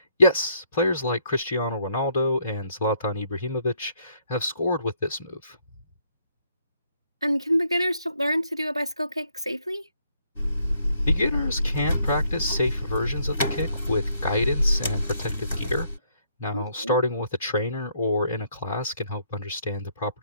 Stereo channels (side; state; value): both; inverted; correlation -0.70